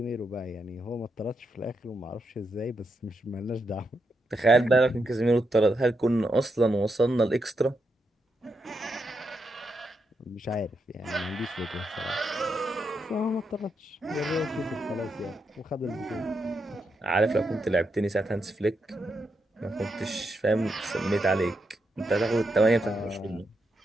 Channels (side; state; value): both; normal; correlation 0.83